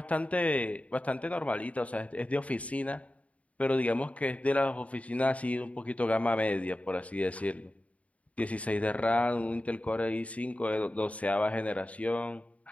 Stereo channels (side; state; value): right; late; 0.067 ms